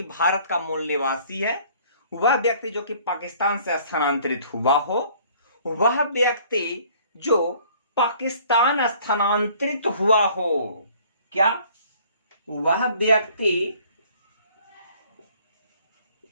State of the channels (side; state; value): both; inverted; correlation -0.56